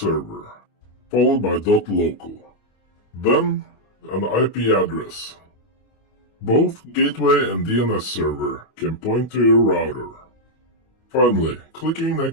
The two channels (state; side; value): late; right; 25 ms